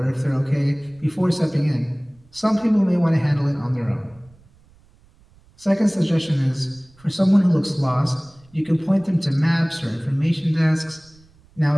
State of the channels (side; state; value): right; noise; rumble, 29 dB below the sound